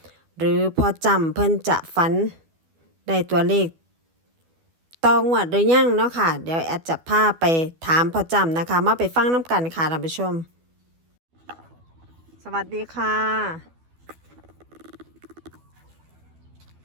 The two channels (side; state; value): left; late; 12 ms